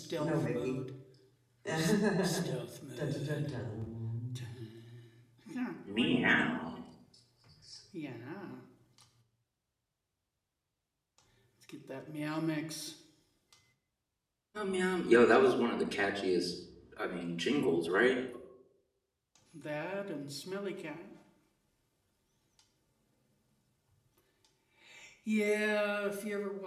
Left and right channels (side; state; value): both; identical; correlation 1.00